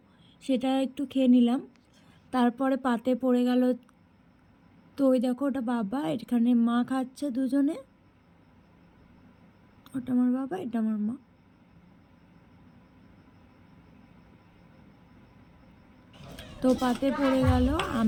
সেটা একটু খেয়ে নিলাম। তারপরে পাতে পড়ে গেল, তো ওই দেখো ওটা বাবা, এখানে মা খাচ্ছে দুজনে, ওটা আমার বাবা, এটা আমার মা। তো পাতে পড়ে গেল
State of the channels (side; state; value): both; identical; correlation 1.00